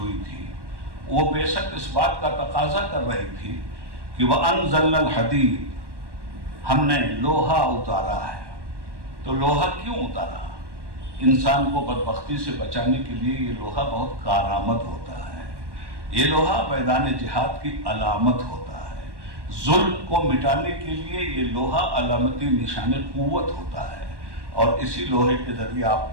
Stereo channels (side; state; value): left; late; 1.1 ms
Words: تھی وہ بعثت اس بات کا تقاضا کر رہی تھی کہ وَأَنزَلْنَا الْحَدِيدَ، ہم نے لوہا اتارا ہے. تو لوہا کیوں اتارا؟ انسان کو بدبختی سے بچانے کے لیے یہ لوہا بہت کارآمد ہوتا ہے. یہ لوہا میدان جہاد کی علامت ہوتا ہے. ظلم کو مٹانے کے لیے یہ لوہا علامتی نشان قوت ہوتا ہے. اور اسی لوہے کے ذریعے